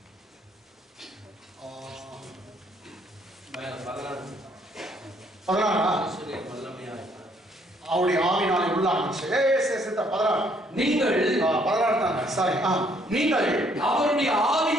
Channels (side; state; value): both; normal; correlation 0.66